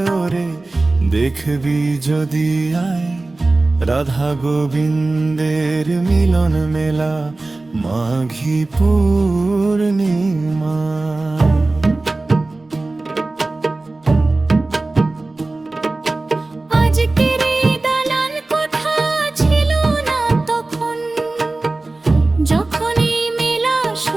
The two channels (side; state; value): left; quieter; 3.1 dB